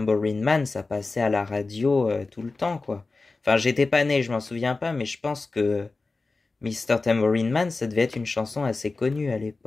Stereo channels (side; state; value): right; quieter; 3.7 dB